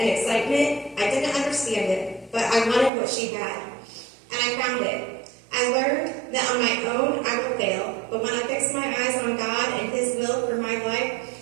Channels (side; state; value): left; drops out; at 2.9 s